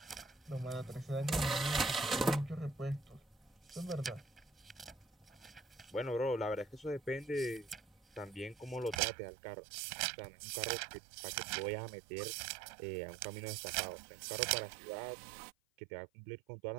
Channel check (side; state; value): left; drops out; at 9.0 s